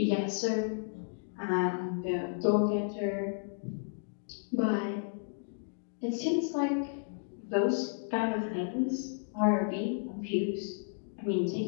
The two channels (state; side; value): silent; right; digital silence